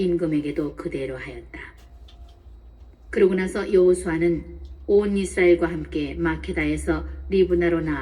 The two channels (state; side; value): identical; both; correlation 1.00